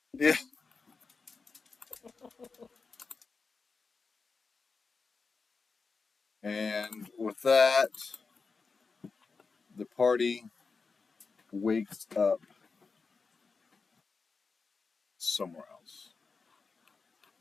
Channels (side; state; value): right; quieter; 4.6 dB